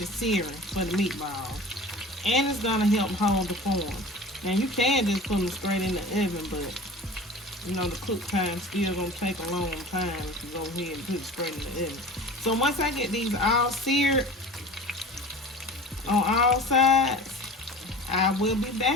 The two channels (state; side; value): normal; both; correlation 0.38